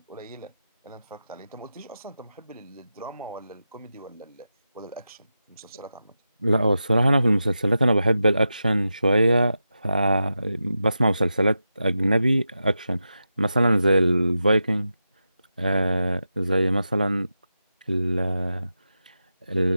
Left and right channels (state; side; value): inverted; both; correlation -0.90